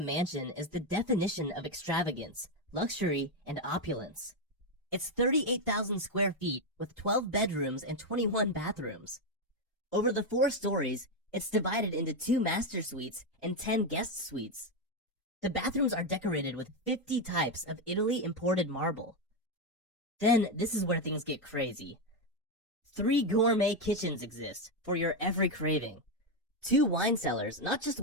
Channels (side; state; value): both; normal; correlation 0.07